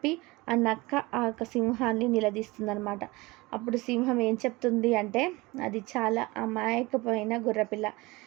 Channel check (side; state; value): left; quieter; 22.5 dB